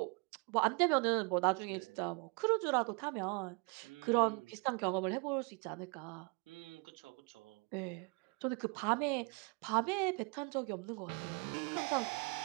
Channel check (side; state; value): left; quieter; 32.6 dB